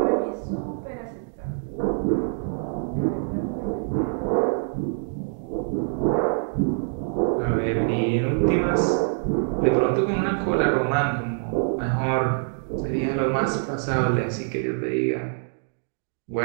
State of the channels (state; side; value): silent; left; digital silence